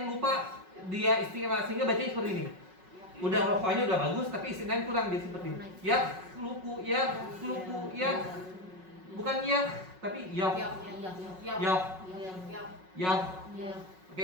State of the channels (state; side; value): late; left; 5.4 ms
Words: lupa dia istilah, sehingga bacanya seperti ini. Udah rokhawahnya udah bagus, tapi istilahnya kurang, dia seperti ini. Yakhluqu, bukan tapi Oke